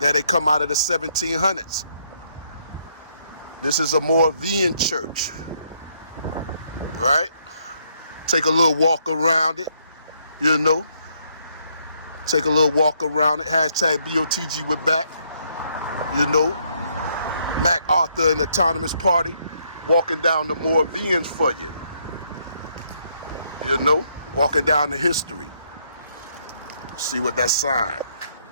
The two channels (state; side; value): inverted; both; correlation -0.71